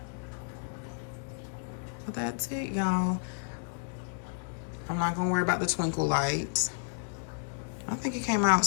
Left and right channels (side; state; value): right; silent; digital silence